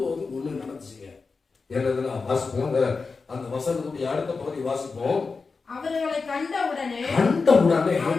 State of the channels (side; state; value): right; quieter; 4.5 dB